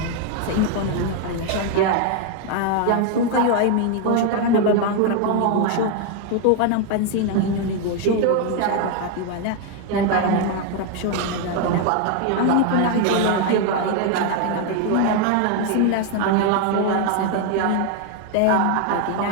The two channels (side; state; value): both; different; correlation 0.01